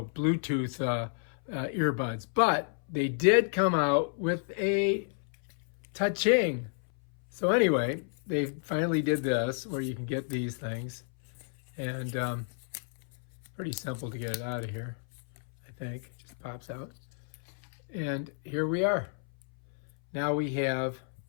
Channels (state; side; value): silent; right; 57 dB below the other